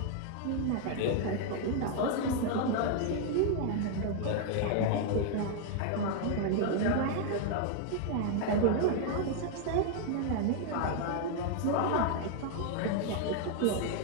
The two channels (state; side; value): different; both; correlation 0.00